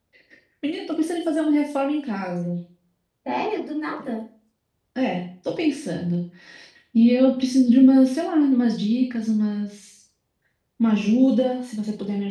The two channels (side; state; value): both; identical; correlation 1.00